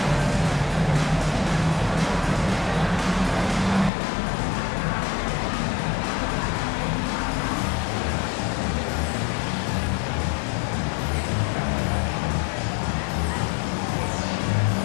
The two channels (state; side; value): drops out; right; at 3.9 s